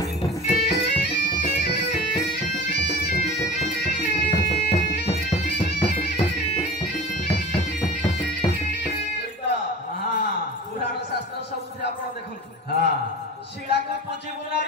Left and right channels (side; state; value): both; normal; correlation 0.36